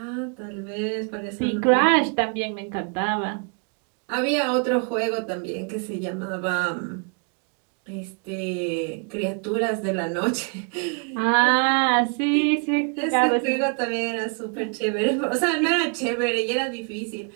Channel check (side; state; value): left; quieter; 39.0 dB